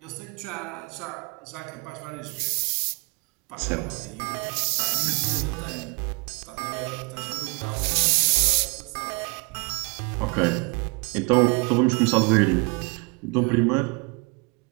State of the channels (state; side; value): quieter; left; 30.6 dB